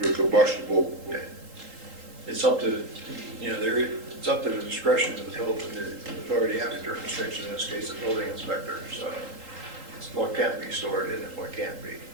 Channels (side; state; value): left; late; 3.8 ms